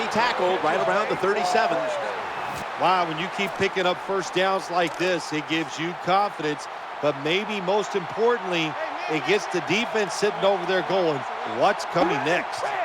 tackled right around the 37. Wow, when you keep picking up first downs like this, it gives you confidence. But maybe most importantly, it gets the defense sitting over there going, what's coming next?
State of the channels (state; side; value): identical; both; correlation 1.00